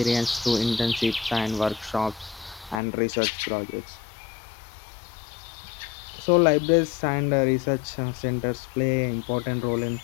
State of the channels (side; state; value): right; drops out; at 2.8 s